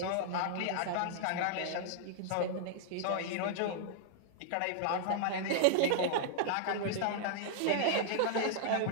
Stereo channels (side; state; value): both; different; correlation -0.02